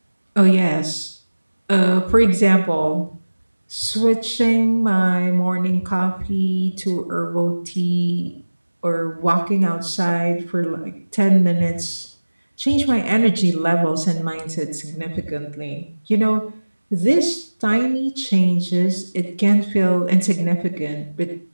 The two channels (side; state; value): both; inverted; correlation -1.00